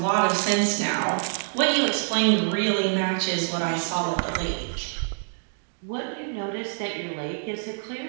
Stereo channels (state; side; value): silent; left; digital silence